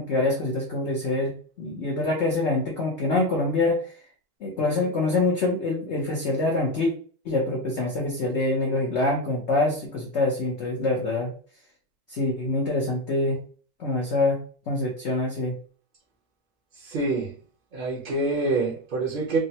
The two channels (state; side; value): normal; both; correlation 0.13